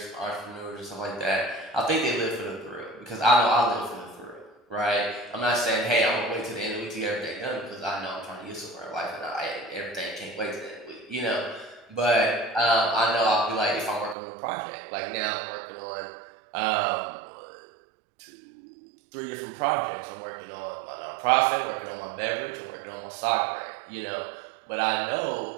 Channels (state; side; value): drops out; left; at 14.2 s